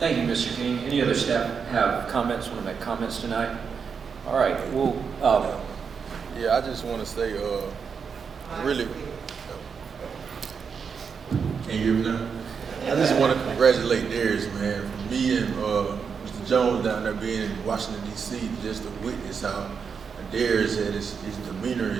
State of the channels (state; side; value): quieter; left; 6.1 dB